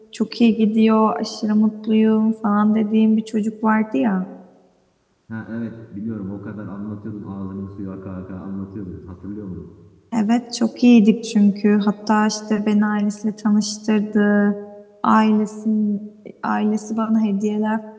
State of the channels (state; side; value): identical; both; correlation 1.00